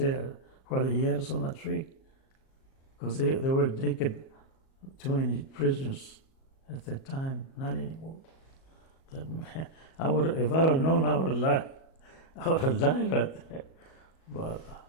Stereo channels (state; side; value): late; right; 37 ms